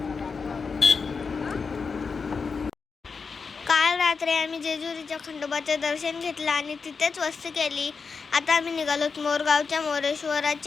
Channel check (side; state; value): right; quieter; 5.1 dB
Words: काल रात्री आम्ही जेजुरीच्या खंडोबाचं दर्शन घेतलं आणि तिथेच वस्ती केली. आता आम्ही निघालो मोरगावच्या